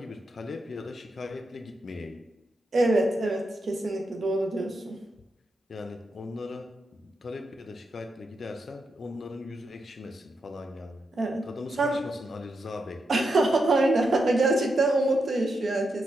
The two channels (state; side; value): normal; both; correlation 0.85